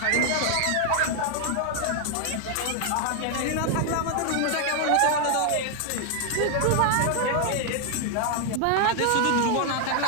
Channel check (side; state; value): both; different; correlation 0.00